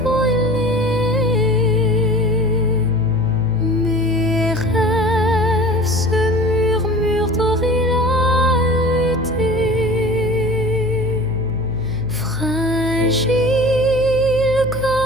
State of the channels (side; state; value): right; noise; hum, 9 dB below the sound